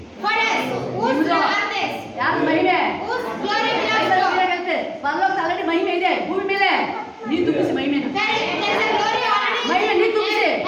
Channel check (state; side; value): identical; both; correlation 1.00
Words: For us, whose ನಿಮ್ದು. earth is? ಯಾವ್ದು ಮಹಿಮೆ? Whose glory belongs ಸೈತಾನಿಗೆ to? ಹೇಗಂತೆ? ಪರಲೋಕದ ಆಲ್ರೆಡಿ ಮಹಿಮೆ ಇದೆ. ಭೂಮಿ ಮೇಲೆ ನೀನು ತುಂಬಿಸಿ ಮಹಿಮೆನ. There is a glory already. ಮಹಿಮೆ ನೀನು ತುಂಬಿಸಿ.